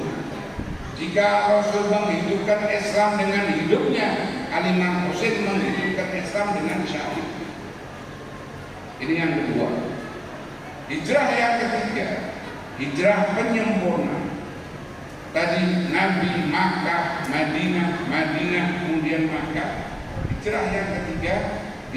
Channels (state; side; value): identical; both; correlation 1.00